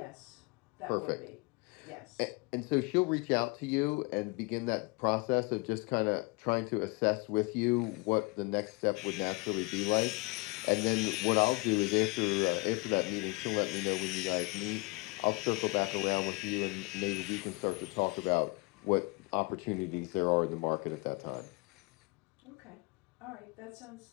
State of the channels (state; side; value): quieter; right; 26.7 dB